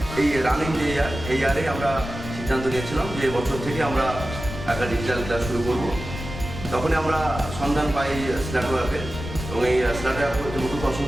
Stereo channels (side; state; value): left; noise; rumble, 9 dB below the sound